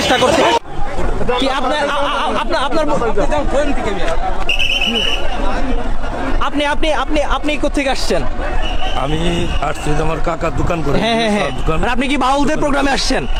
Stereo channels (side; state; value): both; identical; correlation 1.00